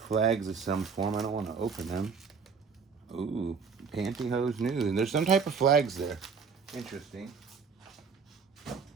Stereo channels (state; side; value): quieter; left; 5.6 dB